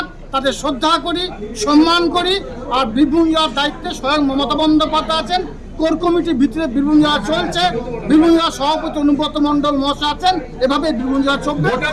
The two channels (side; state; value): both; identical; correlation 1.00